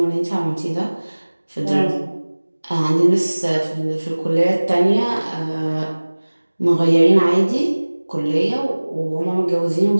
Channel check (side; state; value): both; inverted; correlation -1.00